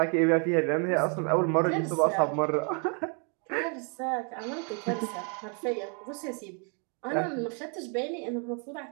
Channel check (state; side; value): quieter; left; 37.9 dB